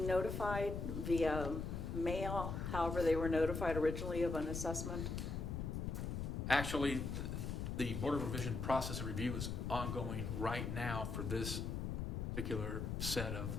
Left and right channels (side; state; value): left; noise; rumble, 3 dB below the sound